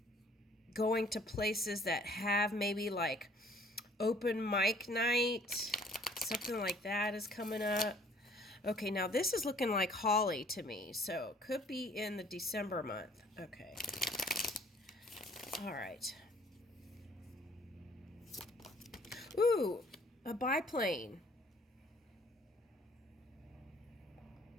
going to places that have maybe like open mic night, something like that is coming up. Okay, now this is looking like Holly to me, so could be in the December month. Okay. All right. Ooh, a biplane.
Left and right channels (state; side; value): normal; both; correlation 0.58